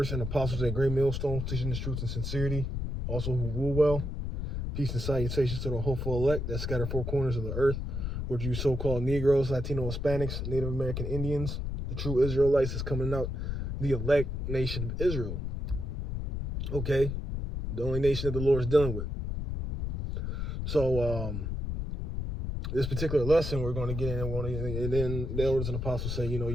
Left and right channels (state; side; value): noise; left; rumble, 3 dB below the sound